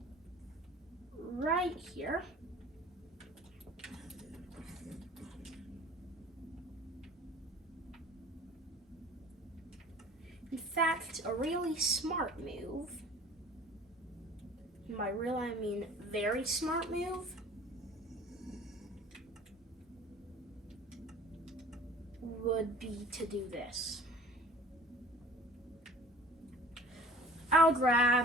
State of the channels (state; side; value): normal; both; correlation 0.46